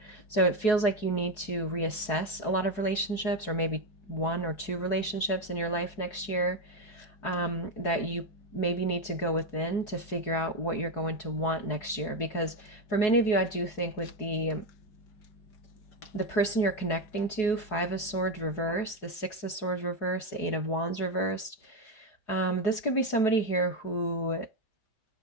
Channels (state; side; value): late; right; 4.7 ms